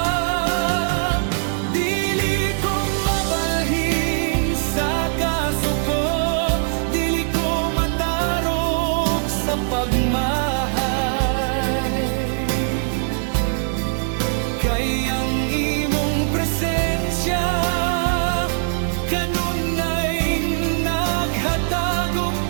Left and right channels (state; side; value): silent; left; digital silence